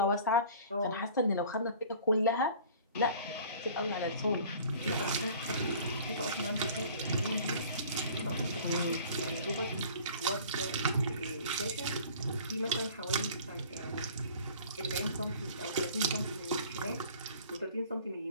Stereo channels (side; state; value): both; inverted; correlation -0.47